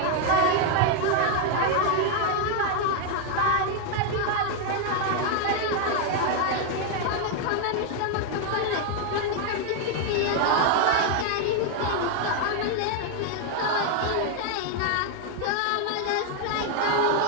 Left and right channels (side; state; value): both; different; correlation 0.00